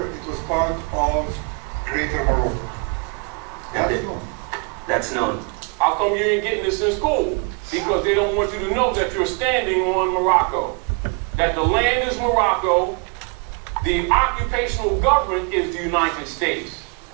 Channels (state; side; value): quieter; left; 35.0 dB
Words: it was part of Greater Morocco. That's known. That's known. How come you ain't getting this in school? Because they don't want you to know that you're standing on Morocco. That the land is Morocco, the occupational government is the United States.